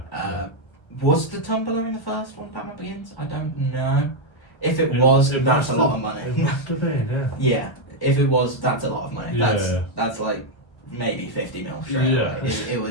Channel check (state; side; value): late; right; 1.3 ms